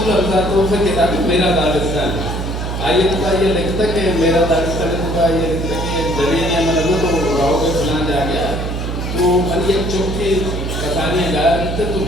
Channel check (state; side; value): noise; right; hum, 4 dB below the sound